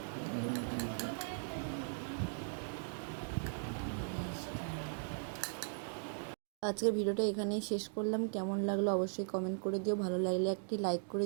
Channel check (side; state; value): left; silent; digital silence